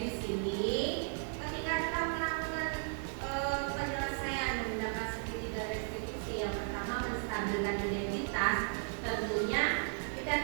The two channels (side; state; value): left; silent; 54 dB below the other